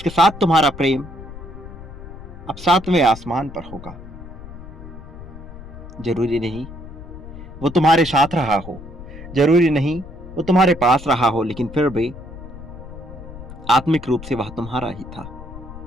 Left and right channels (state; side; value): noise; left; rumble, 14 dB below the sound